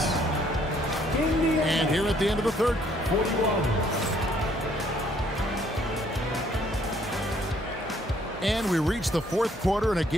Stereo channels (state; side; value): normal; both; correlation 0.64